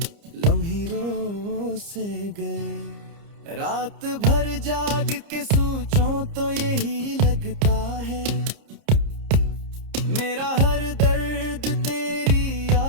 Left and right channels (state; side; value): late; left; 30 ms